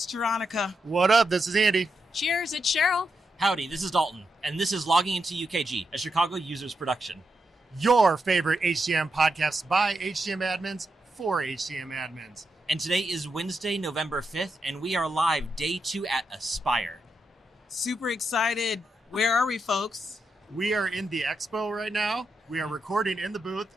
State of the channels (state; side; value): normal; both; correlation 0.84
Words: Veronica. What up? This is Andy. Cheers, it's Cheryl. Howdy, this is Dalton, and this is Logging Into UKG, a Chicago users production. Your favorite HCM podcast by HCM admins for HCM admins. And today is Wednesday, November 5th, and we are live day 2 at Aspire. Super excited. Where are we, folks? We are in the expo right now. We are recording in the booth,